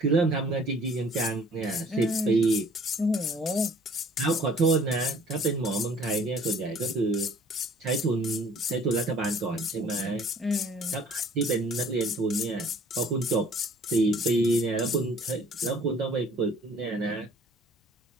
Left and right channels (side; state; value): both; normal; correlation 0.54